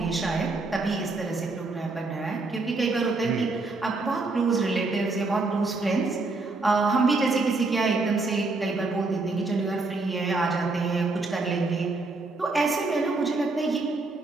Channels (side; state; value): left; quieter; 3.5 dB